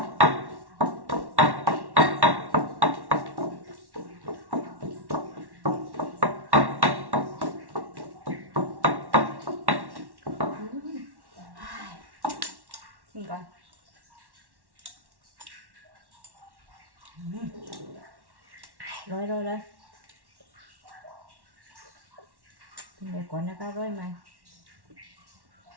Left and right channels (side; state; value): left; late; 1.1 ms